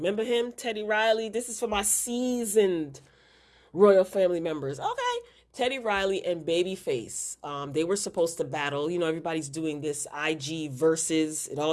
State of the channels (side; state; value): both; identical; correlation 1.00